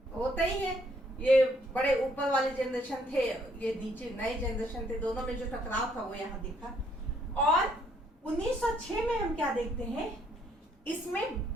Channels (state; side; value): normal; both; correlation 0.68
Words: होता ही है, ये बड़े ऊपर वाले जनरेशन थे, ये नीचे नए जनरेशन थे, दोनों में जो टकराव था वो यहाँ दिखा। और 1906 में हम क्या देखते हैं, इसमें